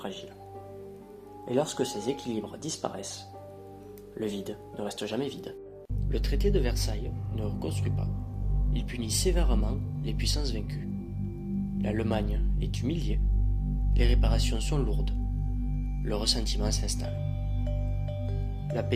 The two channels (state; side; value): identical; both; correlation 1.00